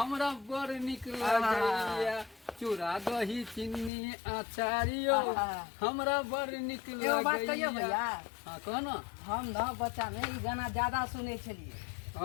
बड़ निक लागैया। चूड़ा दही चीनी अचारियो हमरा बड़ निक लागैया। एगो बात कहियो भैया हां कह ना हम ना बच्चा में ई गाना ज्यादा सुने छलिए।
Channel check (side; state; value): right; drops out; at 3.9 s